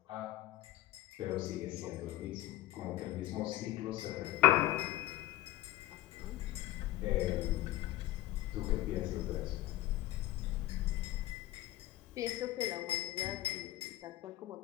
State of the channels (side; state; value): right; quieter; 16.1 dB